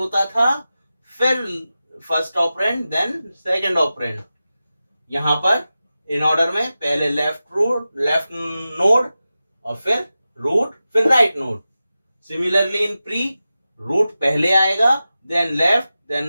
था, फिर first operand, then second operand. यहां पर इन ऑर्डर में पहले लेफ्ट नोड और फिर रूट, फिर right node. Similarly in pre, root पहले आएगा, then left,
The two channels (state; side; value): inverted; both; correlation -0.94